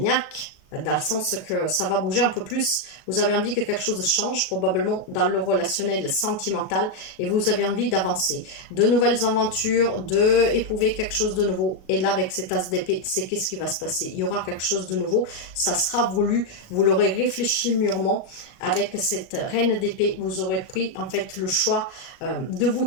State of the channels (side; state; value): right; late; 38 ms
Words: dans le sens que ça va bouger un peu plus. Vous avez envie que quelque chose change, probablement dans le relationnel sentimental, et vous avez envie d'avancer. De nouvelles aventures, d'éprouver quelque chose de nouveau. Et là, avec cet as d'épée, c'est qu'est-ce qui va se passer? Il y aura quelque chose de nouveau, ça sera voulu, vous l'aurez réfléchi mûrement. Avec cette reine d'épée, vous aurez pris en fait le choix de vous